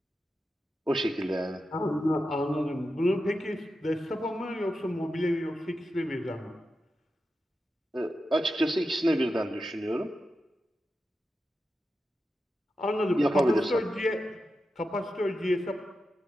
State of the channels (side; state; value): both; normal; correlation 0.90